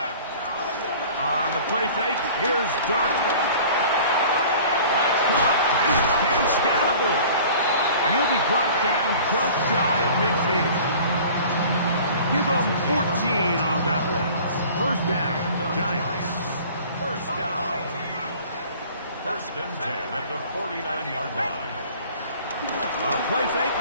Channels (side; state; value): both; inverted; correlation -0.45